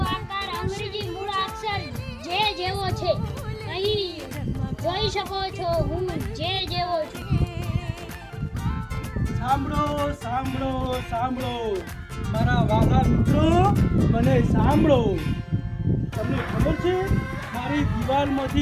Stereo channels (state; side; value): identical; both; correlation 1.00